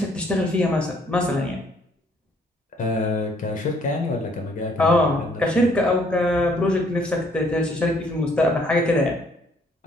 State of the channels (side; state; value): both; normal; correlation 0.64